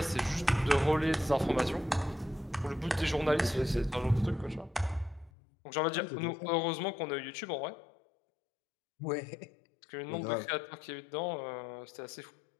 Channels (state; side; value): drops out; right; at 5.3 s